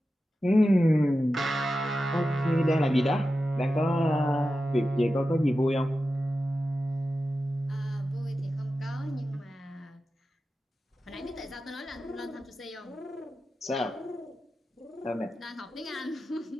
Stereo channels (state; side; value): normal; both; correlation 0.92